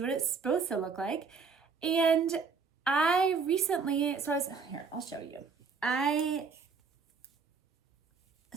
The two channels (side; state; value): left; quieter; 5.1 dB